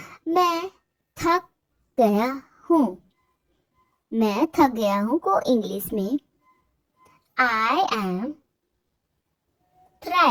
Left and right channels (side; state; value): both; identical; correlation 1.00